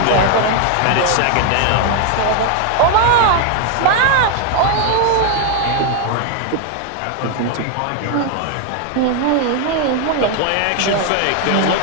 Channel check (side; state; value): both; different; correlation 0.00